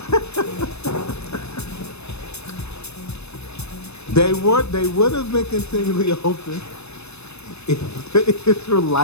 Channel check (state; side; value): late; right; 0.80 ms